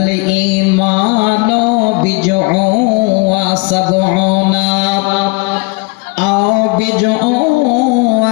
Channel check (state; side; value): quieter; right; 27.9 dB